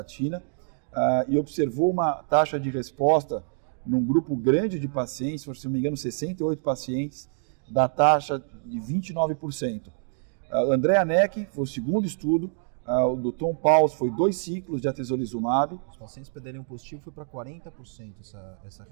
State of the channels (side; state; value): left; silent; digital silence